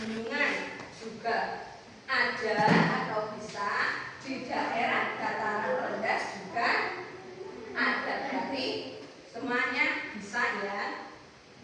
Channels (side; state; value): both; identical; correlation 1.00